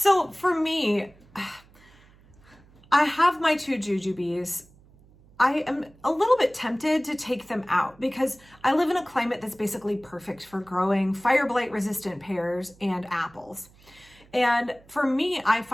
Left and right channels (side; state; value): right; noise; hum, 27 dB below the sound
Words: for me, I have my 2 jujubes. I am a little bit tempted to take them out because I live in a climate that's basically perfect for growing fire blight resistant pears and apples. And for me, I